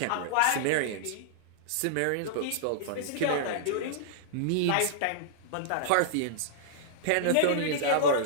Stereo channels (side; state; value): both; different; correlation -0.02